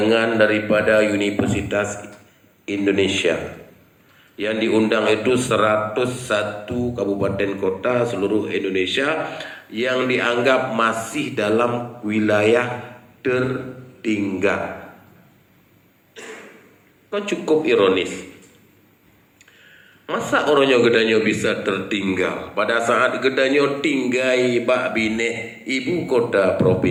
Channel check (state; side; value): identical; both; correlation 1.00